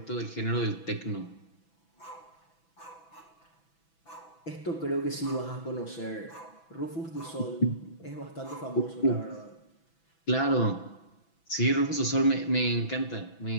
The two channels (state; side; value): late; right; 6.1 ms